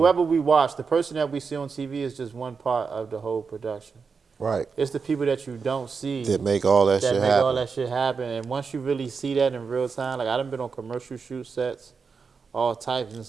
we watch, the person that we see on TV is just one part of the whole production. Right. It's the people that you don't see That make all that shit make happen. all that shit happen. And once you really see that in real time, like I done been on commercial shoot sets, all types, and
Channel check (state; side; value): quieter; left; 5.3 dB